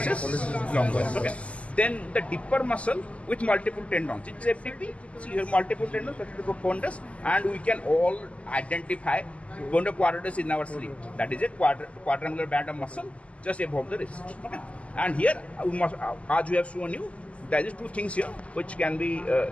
longus. Okay. Then the deeper muscle with multiple tendons. It's FDP. See here multiple tendons, profundus, and we can all identify bunda quadratus in our sleeve. That is a quadrangular band of muscle just above the wrist. Okay. And here we must, as we have shown you, there is two things here which can be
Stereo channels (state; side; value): late; right; 0.063 ms